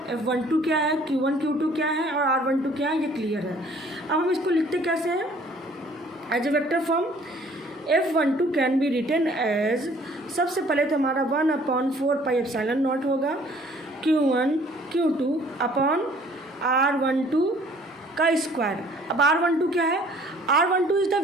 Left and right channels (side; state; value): both; normal; correlation 0.56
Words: F12 क्या है, Q1 Q2 क्या है और R12 क्या है, ये क्लियर है। अब हम इसको लिखते कैसे हैं, as a vector form. F12 can be written as, सबसे पहले तो हमारा 1/4πε0 होगा Q1 Q2 अपॉन R12 का स्क्वायर। अब R12 क्या है, R12 is the